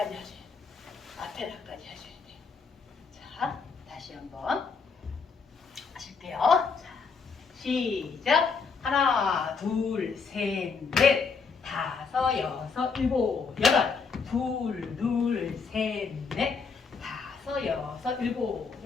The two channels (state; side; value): quieter; right; 5.1 dB